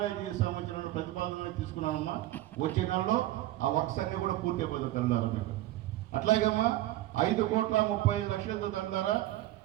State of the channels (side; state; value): left; quieter; 15.5 dB